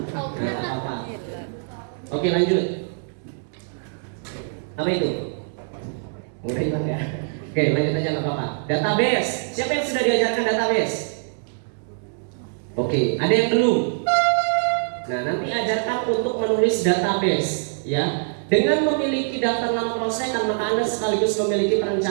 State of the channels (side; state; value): left; silent; digital silence